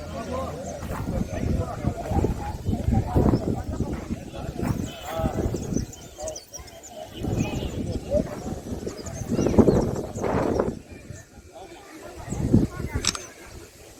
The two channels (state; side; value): identical; both; correlation 1.00